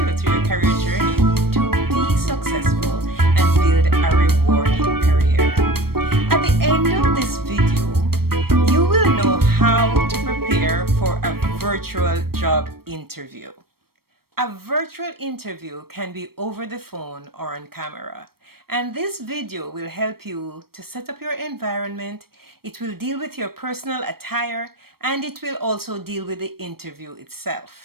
through your career journey to be successful and build a rewarding career. At the end of this video, you will know how to prepare for a virtual job interview. A virtual interview can be over the phone or on camera. And this video will help you to set up your environment. It will deal with your personal attire, and it will also deal with the interview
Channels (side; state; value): left; late; 0.94 ms